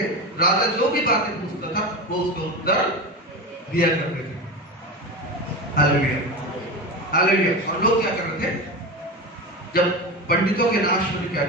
राजा जो भी बातें पूछता था वो उसको उत्तर दिया करते थे। Hallelujah, hallelujah. और लोग क्या कर रहे थे? जब पंडितों के नाश होने क्या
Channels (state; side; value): normal; both; correlation 0.23